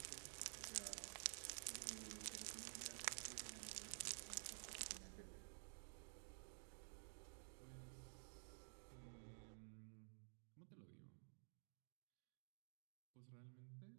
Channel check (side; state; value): left; silent; digital silence